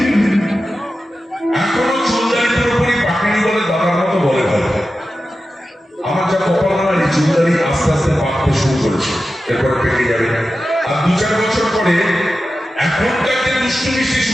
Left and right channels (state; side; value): normal; both; correlation 0.92